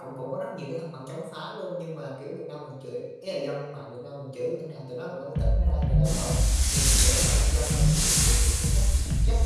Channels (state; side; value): identical; both; correlation 1.00